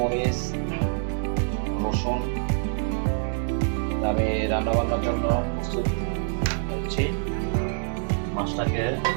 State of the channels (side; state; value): left; silent; digital silence